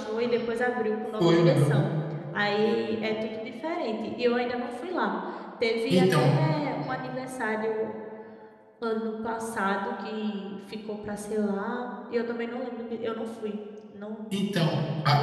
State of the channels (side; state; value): both; identical; correlation 1.00